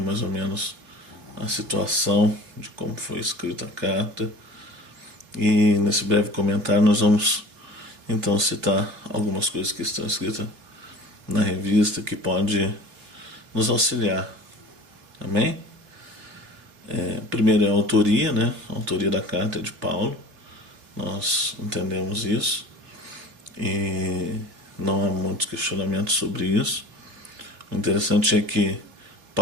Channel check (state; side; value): late; left; 3.1 ms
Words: ou menos a situação de como foi escrita a carta. E nesse breve comentário nós vamos então citar algumas coisas que estão escritas na revista que pode nos auxiliar. Amém? Primeiro é a autoria, né? A autoria da carta é de Paulo. Nós entendemos isso e não há muitos questionamentos sobre isso. O interessante é que